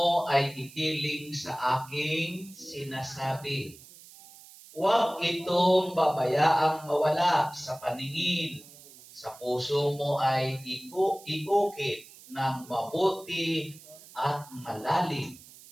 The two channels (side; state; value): right; noise; hiss, 20 dB below the sound